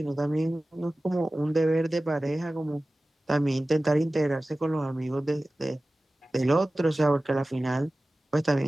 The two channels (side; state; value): both; normal; correlation 0.97